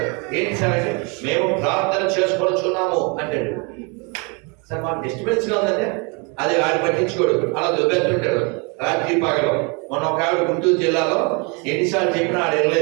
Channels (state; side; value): quieter; left; 32.3 dB